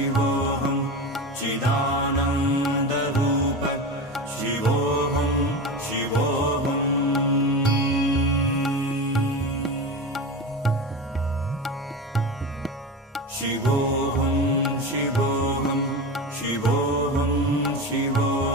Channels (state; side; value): normal; both; correlation 0.24